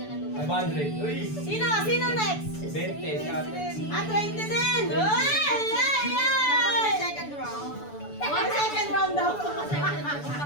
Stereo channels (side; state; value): right; late; 6.9 ms